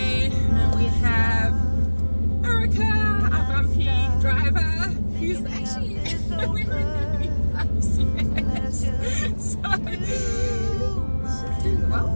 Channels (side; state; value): both; inverted; correlation -1.00